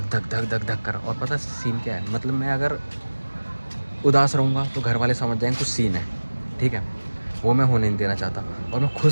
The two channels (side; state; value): both; inverted; correlation -1.00